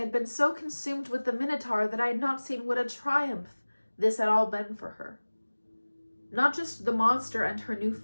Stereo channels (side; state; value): both; inverted; correlation -1.00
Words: been so consumed with the Minotaur that I had not seen what a triumph this had all been for her. Not just the monster and her new